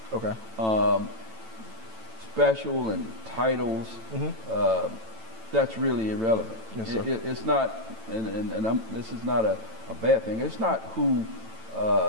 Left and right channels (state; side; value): late; left; 9.0 ms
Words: Okay. Special and titles. That's really irrelevant. Yes, sir. It's not, and this is not a bad thing. It's not who